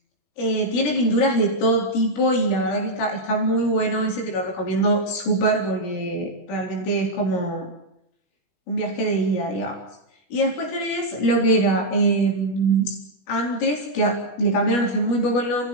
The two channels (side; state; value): right; late; 21 ms